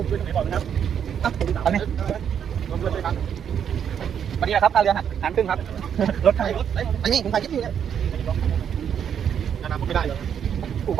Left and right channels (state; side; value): quieter; left; 8.4 dB